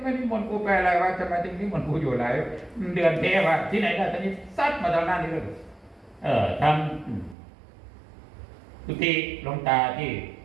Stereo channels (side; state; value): left; drops out; at 7.4 s